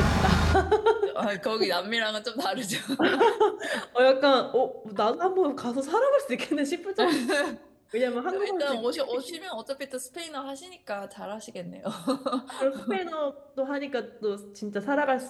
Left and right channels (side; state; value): both; identical; correlation 1.00